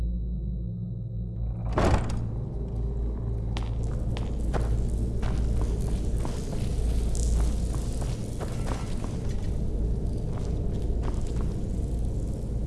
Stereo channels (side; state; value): both; identical; correlation 1.00